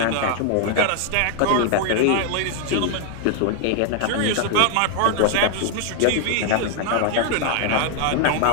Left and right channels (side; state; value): both; different; correlation 0.00